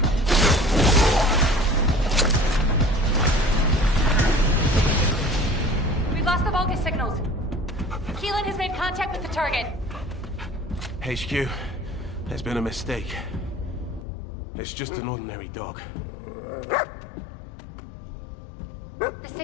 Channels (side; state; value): right; drops out; at 14.1 s